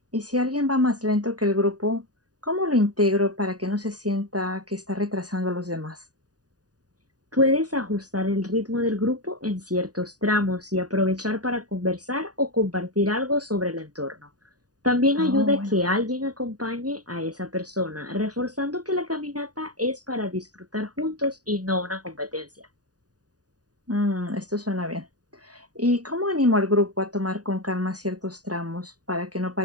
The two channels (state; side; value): late; left; 0.68 ms